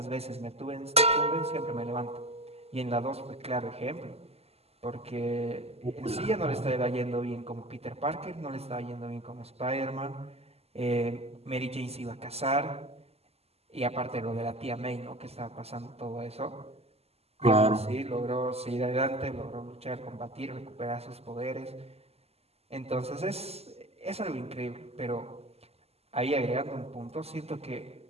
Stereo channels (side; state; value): left; late; 0.29 ms